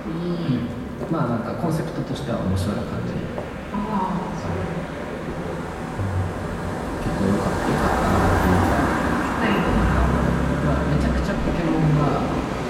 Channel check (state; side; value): identical; both; correlation 1.00